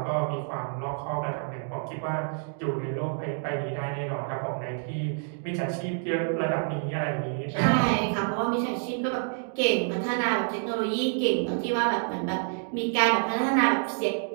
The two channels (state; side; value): silent; left; 59 dB below the other